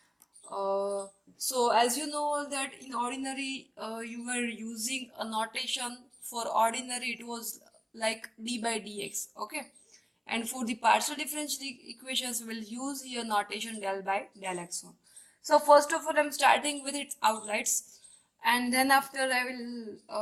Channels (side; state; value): both; identical; correlation 1.00